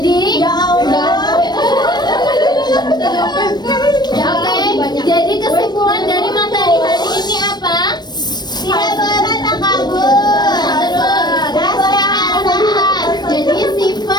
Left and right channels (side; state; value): right; late; 0.20 ms